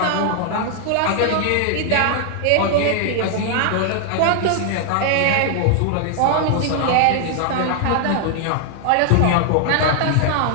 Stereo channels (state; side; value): different; both; correlation 0.00